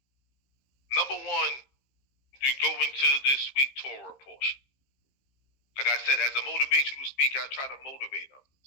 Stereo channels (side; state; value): right; late; 15 ms